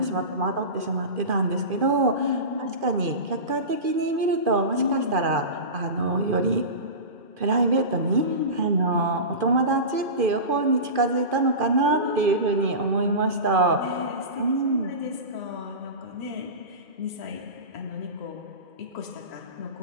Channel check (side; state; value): left; late; 2.5 ms